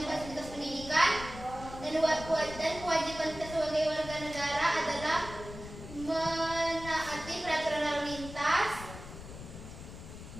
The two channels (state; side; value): noise; left; rumble, 13 dB below the sound